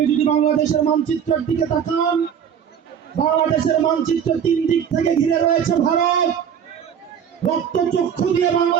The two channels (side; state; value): left; quieter; 8.2 dB